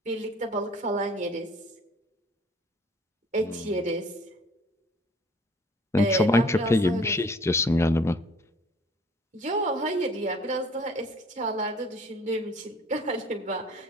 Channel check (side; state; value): both; normal; correlation 0.54